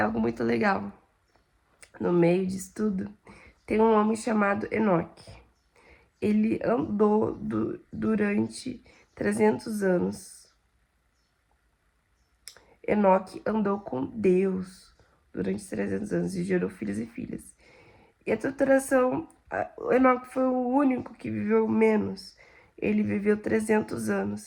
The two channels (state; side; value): identical; both; correlation 1.00